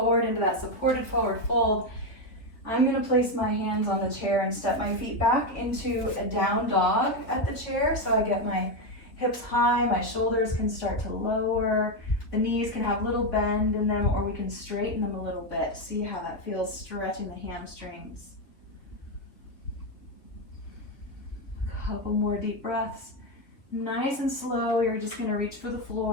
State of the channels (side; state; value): right; late; 3.4 ms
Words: into that supported forward fold. I'm going to place my hands on the chair and step my feet back into a down dog at the chair, so I get my hips high, my shoulders can start to lower, the knees can have a little bend in them, or we can straighten them a little bit. See how that feels, stretching the hamstrings. A couple more deep breaths. Nice and slow, you're just going to reach for the